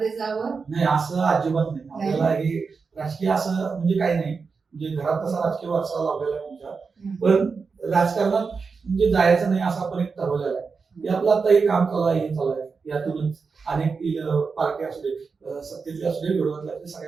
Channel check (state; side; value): quieter; left; 5.0 dB